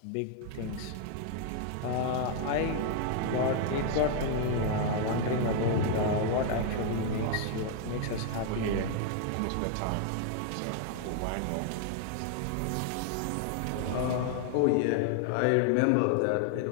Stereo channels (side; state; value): both; different; correlation 0.00